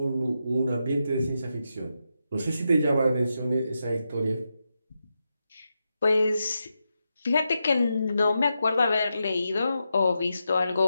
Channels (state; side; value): inverted; both; correlation -0.87